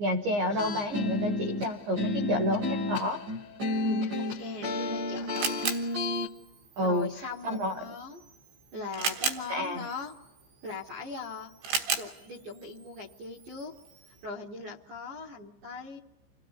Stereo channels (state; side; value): late; left; 15 ms